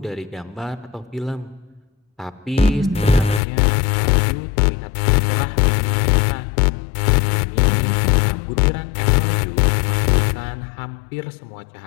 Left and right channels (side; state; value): right; drops out; at 3.4 s